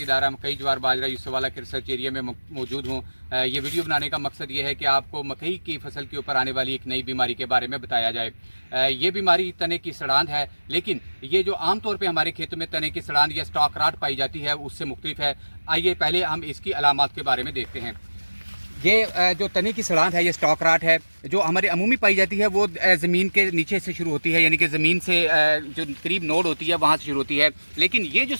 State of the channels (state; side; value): inverted; both; correlation -1.00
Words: दायरा मकई ज्वार बाजरा यूसुफवाला के रिसर्च एरिया में मौजूद हूँ। ये वीडियो बनाने का मकसद ये है कि आपको मकई की फसल के ऊपर आने वाली एक नई बीमारी के बारे में बताया जाए। ये बीमारी तने की सड़ांध है, लेकिन ये जो आमतौर पे हमारे खेतों में तने की सड़ांध या स्टॉक राट पाई जाती है उससे मुख्तलिफ है। आइए पहले हम इसकी अलामात के बारे में देखते हैं। ये जो तने की सड़ांध है, ये स्टॉक राट है जो हमारे अमूमी पाई जाती है। वो ज़मीन के नीचे से शुरू होती है, यानी कि ज़मीन से जो करीब नोड होती है वहाँ से शुरू होती है। लेकिन ये जो